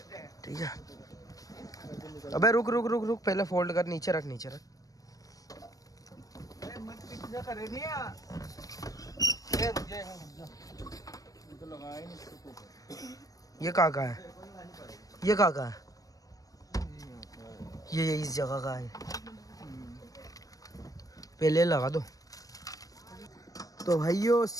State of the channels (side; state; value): right; late; 0.17 ms